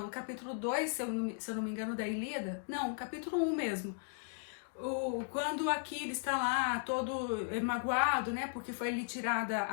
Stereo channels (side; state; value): right; silent; digital silence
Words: capítulo 2, se eu não me engano, da Ilíada. Não, o capítulo 1 mesmo. Quando Aquiles está lá todo magoado, né, porque foi lhe tirada